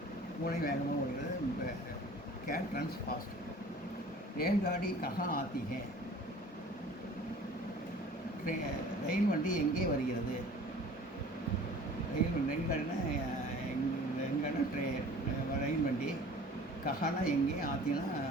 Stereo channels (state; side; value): normal; both; correlation 0.47